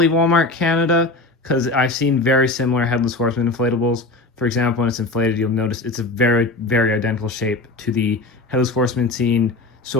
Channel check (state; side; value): quieter; right; 3.1 dB